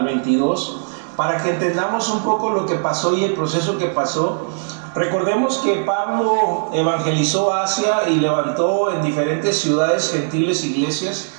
22, para que entendamos un poco lo que pasó y el proceso que pasó. Recordemos que Pablo evangelizó Asia y levantó en diferentes ciudades gentiles iglesias.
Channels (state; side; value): silent; left; digital silence